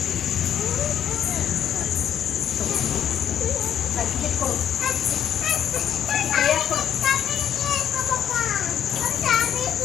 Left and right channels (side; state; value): right; quieter; 9.5 dB